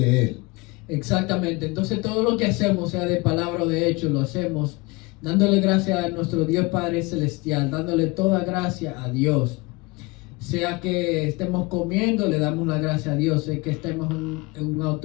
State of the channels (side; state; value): right; quieter; 25.1 dB